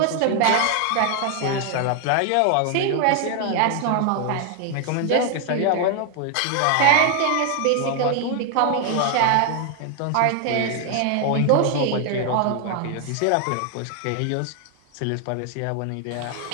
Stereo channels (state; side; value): different; both; correlation 0.01